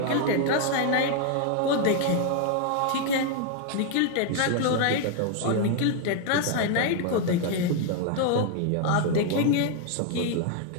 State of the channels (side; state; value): both; different; correlation 0.00